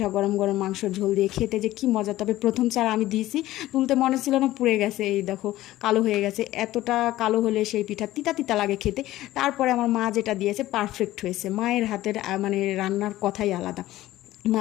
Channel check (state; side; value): quieter; right; 15.6 dB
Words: গরম গরম মাংসর ঝোল দিয়ে খেতে যে কি মজা। তবে প্রথম চার আমি দিয়েছি, তুলতে মনে ছিল না, পুড়ে গেছে। এই দেখো কালো হয়ে গেছে। এতটা কালো হলে সেই পিঠা তিতা তিতা লাগে খেতে। তারপরে আমার মা যেটা দিয়েছে পারফেক্ট হয়েছে। মায়ের হাতের মানে রান্নার কথাই আলাদা,